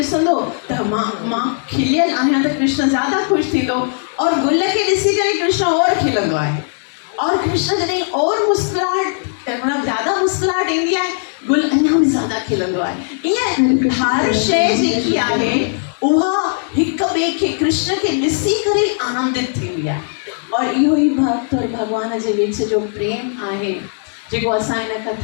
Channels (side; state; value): right; silent; 68 dB below the other